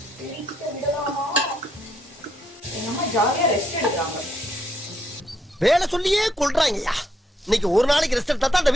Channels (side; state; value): both; normal; correlation 0.74